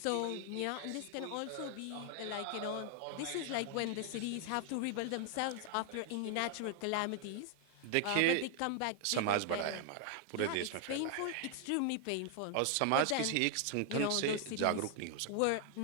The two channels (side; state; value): both; different; correlation 0.00